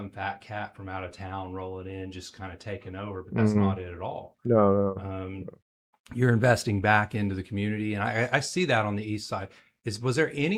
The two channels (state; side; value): identical; both; correlation 1.00